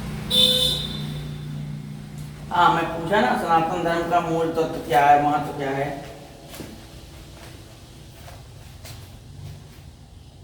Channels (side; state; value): both; identical; correlation 1.00